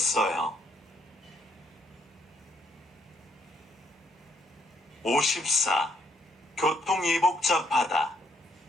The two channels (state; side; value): normal; both; correlation 0.73